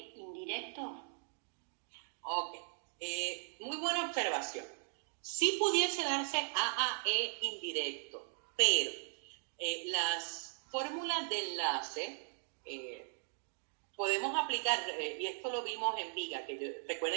indirecto? Ok. Muy buena observación. Sí pudiese darse AAE indirecto, pero las fórmulas de enlace podemos aplicar, y esto lo vimos en viga,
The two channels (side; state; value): left; silent; digital silence